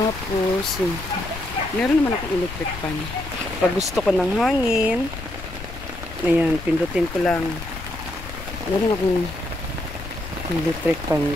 meron naman akong electric fan. Pag gusto ko ng hangin, ayan, pindutin ko lang. Meron akong electric fan,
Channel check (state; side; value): noise; left; rumble, 11 dB below the sound